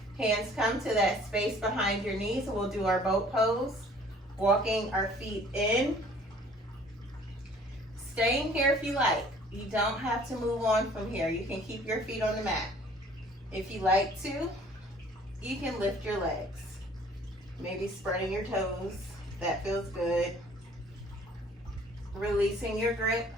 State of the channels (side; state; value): both; normal; correlation 0.54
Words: Hands come to that space behind your knees. We'll do our boat pose. Walking our feet in. Staying here if you like. You don't have to move on from here. You can keep your feet on the mat. If you like to, you can lift your legs. Maybe spreading your toes. That feels good. Releasing your grip